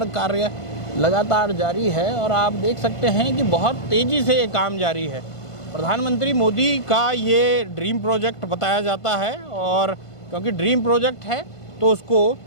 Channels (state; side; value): late; right; 1.5 ms